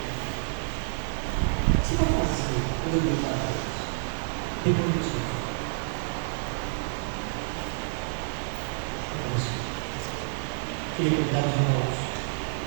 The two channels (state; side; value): silent; left; 59 dB below the other